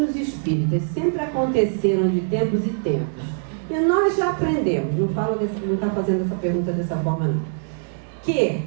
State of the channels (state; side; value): silent; left; digital silence